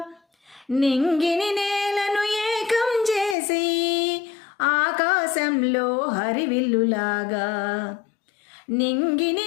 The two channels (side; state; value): right; drops out; at 3.4 s